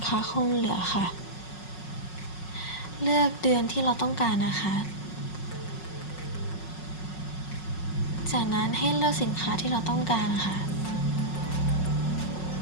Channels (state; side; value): late; right; 5.5 ms